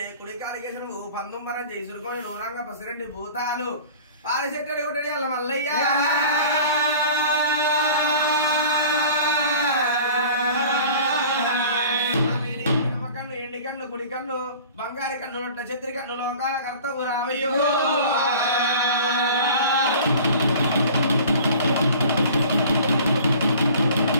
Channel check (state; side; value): inverted; both; correlation -0.44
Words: కుడికాలు కేసులు పందుంబరం చేయి సురుకొని నూరంగ పసిరెడ్డి భూతాలు పాలచెట్టడి కొట్టడి అల్ల మల్లయ్య కన్ను ఎండి కన్ను కుడి కన్ను బంగారి కన్ను నొట్ట చెత్రి కన్ను లోకాల కర్తవు రావయ్యో